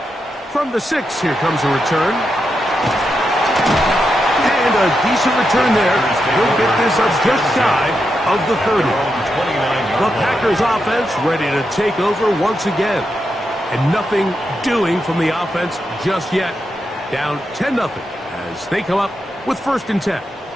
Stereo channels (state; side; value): normal; both; correlation 0.85